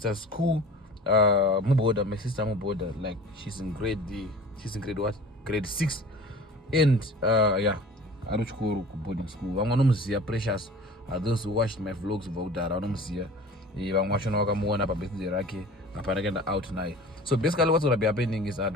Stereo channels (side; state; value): both; normal; correlation 0.41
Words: school. My sister Muboda, like she's in grade what? Grade 6. And yeah, I don't go to boarding school. I'm gonna see precious. Those who watched my vlogs about that, I'm gonna see. I'm watching Wakamuana Babeti Raki, Aparagenda out now. So basically what's gonna be happening is I'm